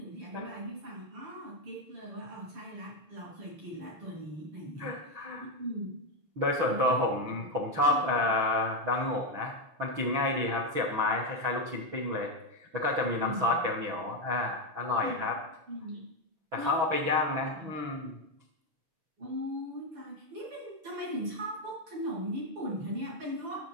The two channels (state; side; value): late; left; 6.2 ms